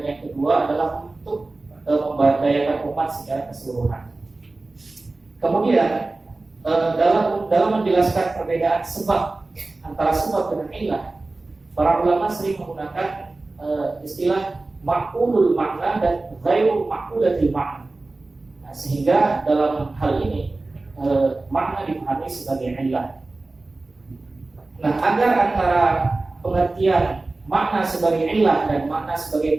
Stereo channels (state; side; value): quieter; left; 3.2 dB